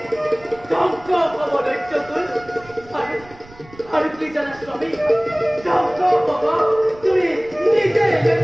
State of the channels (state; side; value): noise; right; rumble, 23 dB below the sound